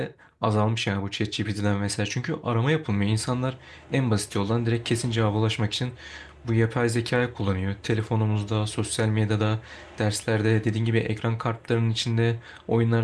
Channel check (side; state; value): both; identical; correlation 1.00